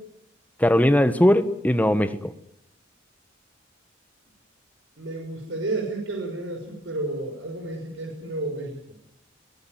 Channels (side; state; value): both; normal; correlation 0.81